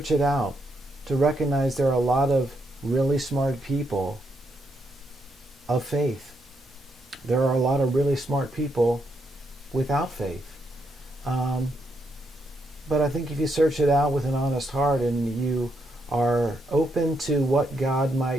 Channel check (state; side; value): normal; both; correlation 0.78